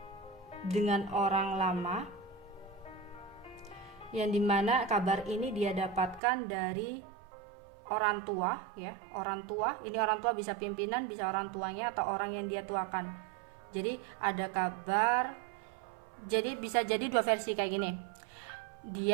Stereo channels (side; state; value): left; drops out; at 6.2 s